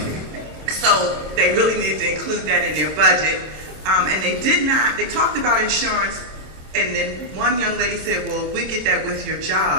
So they really needed to include that in their budget. And they talked about insurance, and then one young lady said, well, we get that with your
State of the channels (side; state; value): left; late; 26 ms